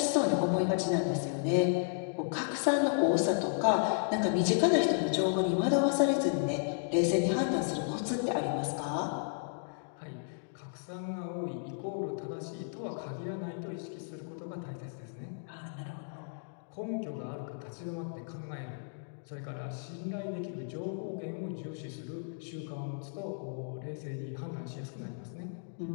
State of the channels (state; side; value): silent; right; digital silence